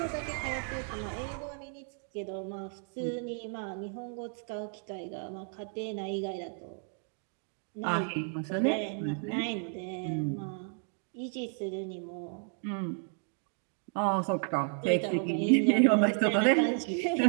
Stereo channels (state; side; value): silent; left; 56 dB below the other